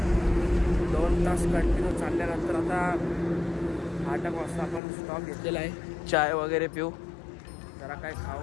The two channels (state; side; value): drops out; right; at 4.8 s